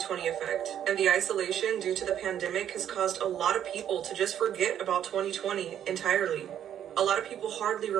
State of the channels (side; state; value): left; quieter; 10.1 dB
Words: effect, and the isolation due to the pandemic has caused a lot of people to just forget about 2020 entirely. A lot of people hardly